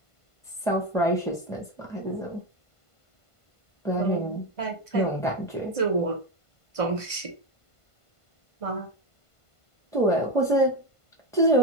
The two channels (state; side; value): late; right; 1.5 ms